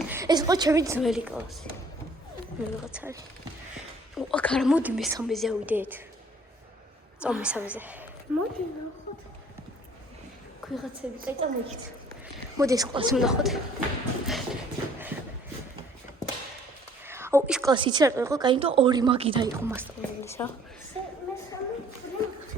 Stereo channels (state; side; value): normal; both; correlation 0.57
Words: ეს იყო ჩემი ძველი კლასი. ვიღაცა არის. აქ არა, მოდი მესამეზე ავიდეთ. წავ მესამეზე. მოდი ნახოთ. ვიღაცები, კაი, წამოიქით. მოდი ეს კლასი ვნახოთ. აუ, ის კლასი იცი რა იყო? კაი, იმიტომ ორი მაგი დაიყო მასწავლებლის რა.